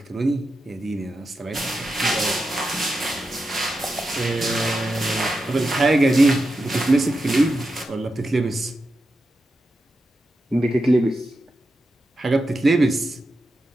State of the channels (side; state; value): both; normal; correlation 0.89